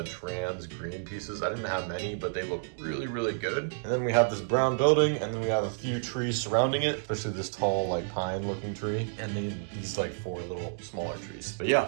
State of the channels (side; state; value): left; silent; digital silence